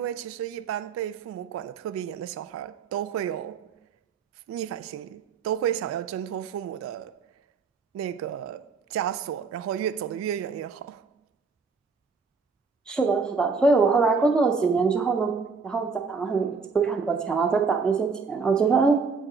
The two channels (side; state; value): left; quieter; 4.8 dB